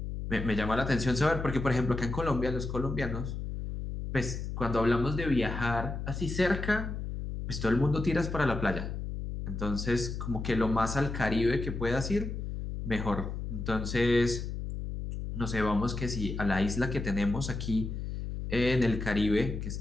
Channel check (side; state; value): left; noise; hum, 5 dB below the sound